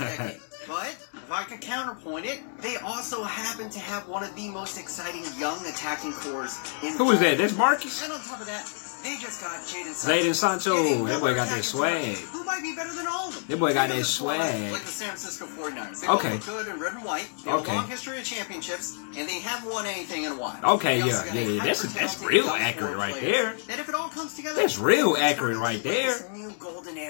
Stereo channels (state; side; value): silent; right; 60 dB below the other